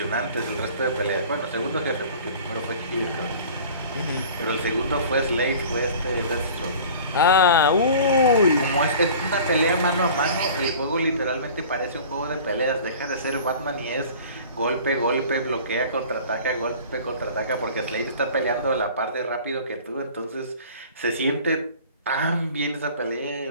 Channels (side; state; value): both; inverted; correlation -0.43